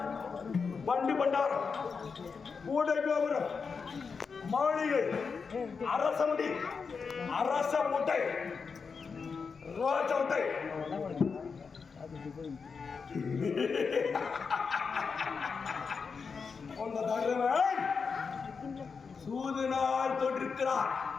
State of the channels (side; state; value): right; quieter; 5.3 dB